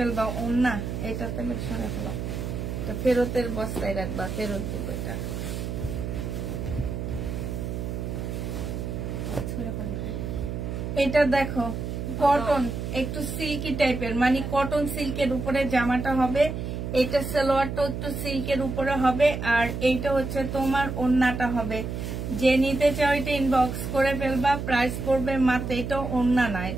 ওড়না এটা তাহলে সরে ফেলা, ফেরতের বস্তায় রাখবা, ফেরত দিব এটা। এটা দেখো, কটন একটু সিল্কি টাইপের, মানে কটন সিল্কের উপরে জামাটা হবে। এটা সালোয়ারটা একটু সিল্কের উপরে হবে, আর এইটা হচ্ছে তোমার ওড়নাটা হবে। যে নিতে চাও এটা ইনবক্স করে ফেলবা, প্রাইস পড়বে মাত্র। এটা ওড়না না,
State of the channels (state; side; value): noise; right; hum, 4 dB below the sound